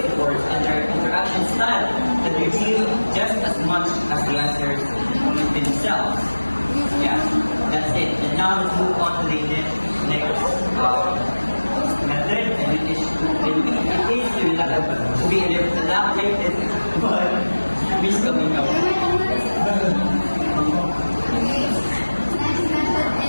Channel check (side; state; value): both; inverted; correlation -1.00